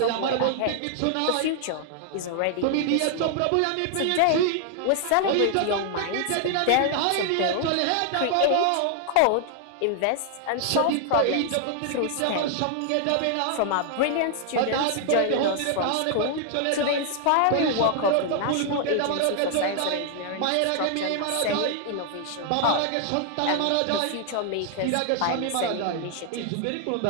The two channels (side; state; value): both; different; correlation 0.00